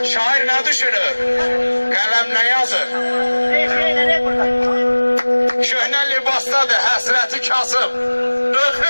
Şair nə düşünür? Qələm nə yazır? Köhnə libasdadır, həsrəti kasıb.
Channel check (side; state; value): both; inverted; correlation -1.00